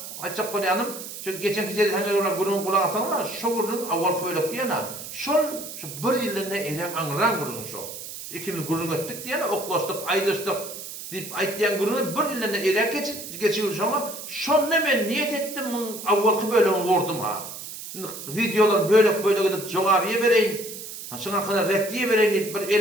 açık koyanım. Çünkü geçen kişileri hangi olarak gururun kulağı asanlar, şu gururun avvalki böyle diyene, şu 1 yılında eylem anıran gururun şu. İkimiz gururun ettik diyene, oklaştık, ayrıştık. Dip aýtýan gurunu 1 ýylda erek geçiyor şoma. Şonda men niyet etdim, awvalky bölümi wurdum ha. Videolar böyle gidip jogabyýa bereýin. Şoňa kadar reddiýe bereýin diýip bir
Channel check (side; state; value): right; noise; hiss, 10 dB below the sound